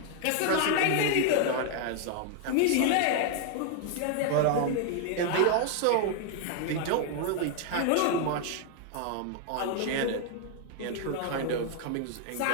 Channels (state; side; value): different; both; correlation 0.00